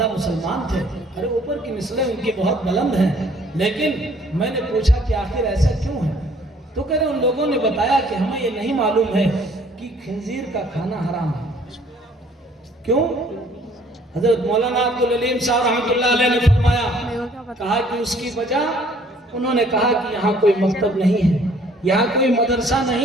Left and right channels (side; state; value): both; normal; correlation 0.59